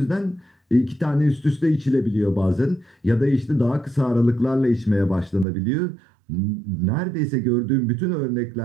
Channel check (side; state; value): left; drops out; at 5.5 s